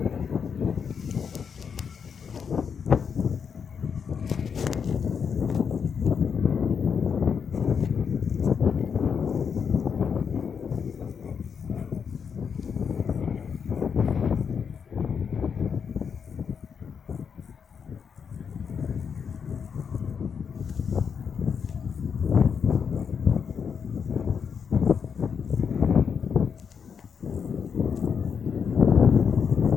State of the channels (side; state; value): right; quieter; 6.6 dB